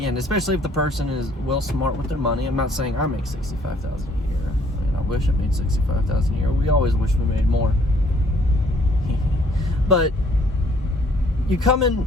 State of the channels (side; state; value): both; normal; correlation 0.62